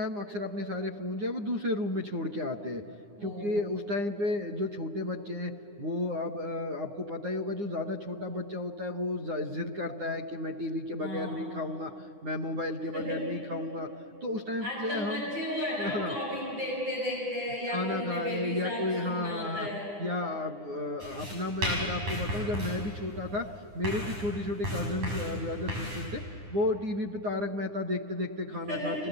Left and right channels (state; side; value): late; left; 9.8 ms